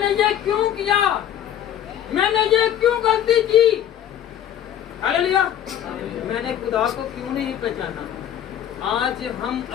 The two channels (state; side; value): quieter; right; 10.5 dB